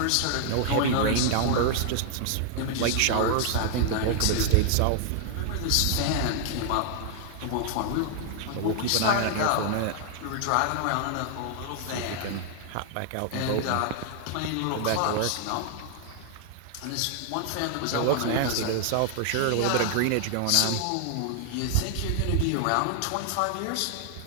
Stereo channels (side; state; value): both; different; correlation 0.00